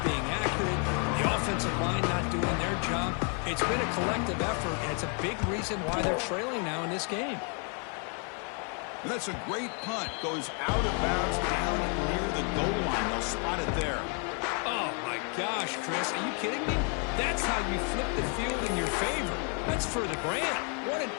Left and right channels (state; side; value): quieter; right; 39.0 dB